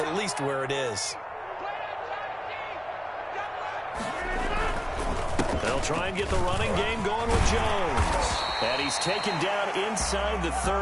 least where it is. They'll try and get the running game going with Jones. And he's taken down inside the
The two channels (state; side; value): identical; both; correlation 1.00